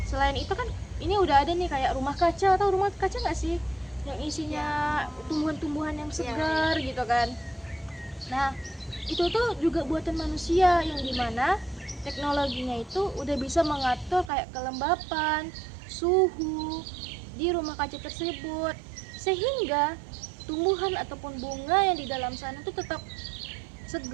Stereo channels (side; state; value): left; drops out; at 14.3 s